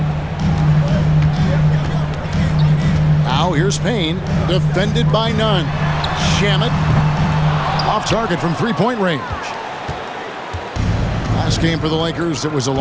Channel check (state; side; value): identical; both; correlation 1.00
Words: Now here's Payne, defended by Nunn. Shamet Off target from three-point range. Last game for the Lakers, it was a